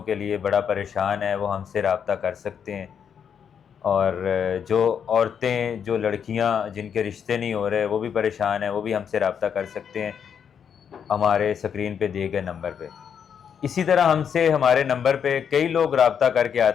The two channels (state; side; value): quieter; right; 7.7 dB